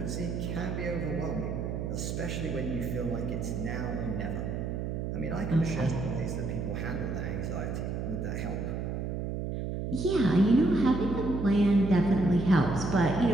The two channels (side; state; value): right; noise; hum, 3 dB below the sound